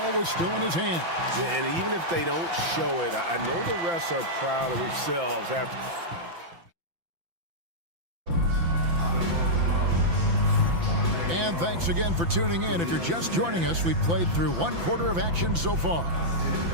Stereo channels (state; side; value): late; left; 5.9 ms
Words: was still in his hand. And even if they don't show it, I know the refs are proud of themselves after. And thanks again for tuning in. If you're just joining us, we've played through one quarter of action so far.